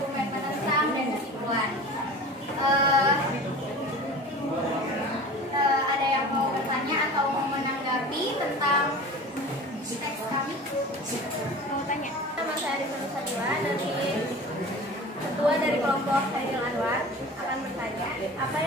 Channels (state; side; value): normal; both; correlation 0.37